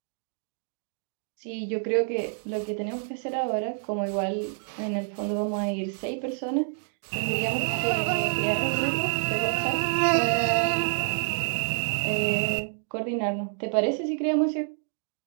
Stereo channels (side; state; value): left; silent; 60 dB below the other